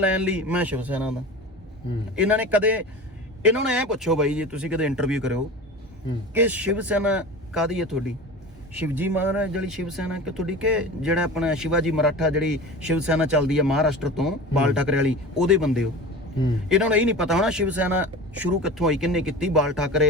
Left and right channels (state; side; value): normal; both; correlation 0.33